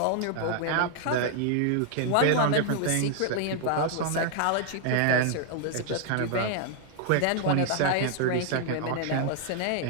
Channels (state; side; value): different; both; correlation 0.00